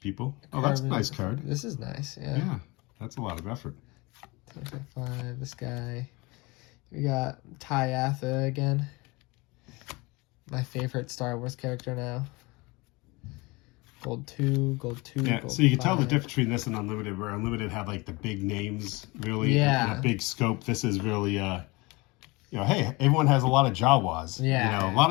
people. Oh, that's a nice card. This is nice, yeah. Yeah, that's a lot of effort. 5, this guy. We got Ty Atha again. My favorite Star Wars character now. Gold 2. Yeah, gold so you can 5. tell the difference between this and Unlimited, where Unlimited had like the big names, really, yeah, and a big scope. This is really hey, everyone has a lot of Jawas. Yeah. A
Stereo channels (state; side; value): quieter; right; 24.6 dB